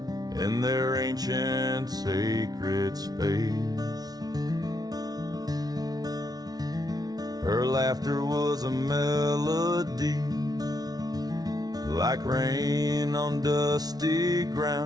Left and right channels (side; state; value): left; late; 0.19 ms